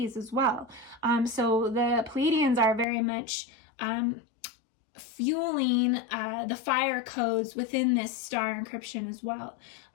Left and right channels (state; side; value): drops out; right; at 2.9 s